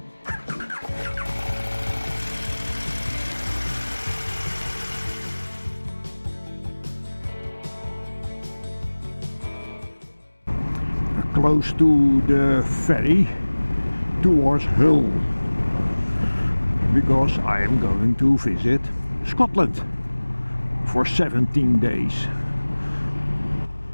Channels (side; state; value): both; inverted; correlation -1.00